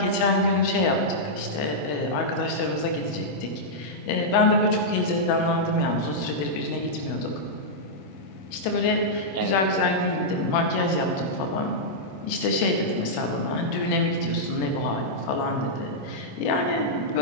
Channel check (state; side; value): late; right; 26 ms